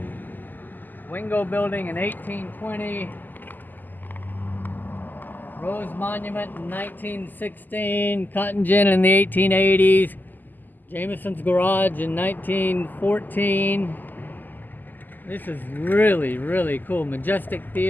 Wingo building in 1820, Rose Monument in 1916, Cotton Gin in the 1880s, Jameson's Garage in 1914. This is really, really cool. Majestic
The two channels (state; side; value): late; right; 0.087 ms